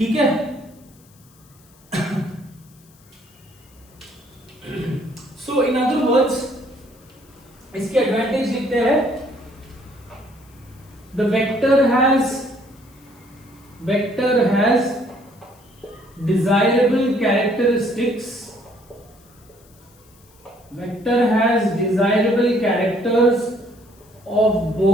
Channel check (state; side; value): noise; left; hiss, 29 dB below the sound